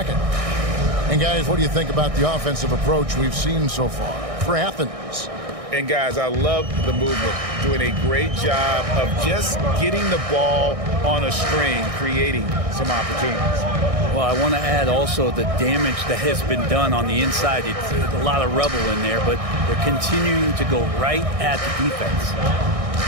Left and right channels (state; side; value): late; left; 1.6 ms